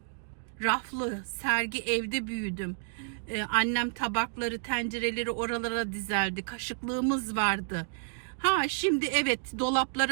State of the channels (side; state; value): left; silent; digital silence